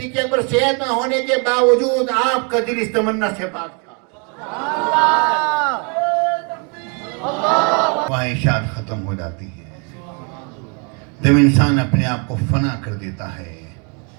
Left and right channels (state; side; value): quieter; left; 35.8 dB